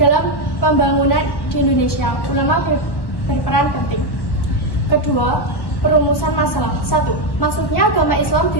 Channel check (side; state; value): right; late; 1.1 ms